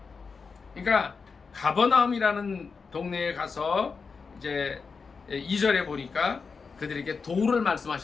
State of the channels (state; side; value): quieter; right; 5.1 dB